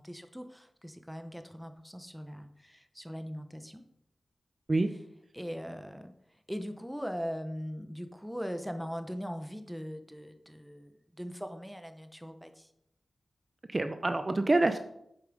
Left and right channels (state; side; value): normal; both; correlation 0.98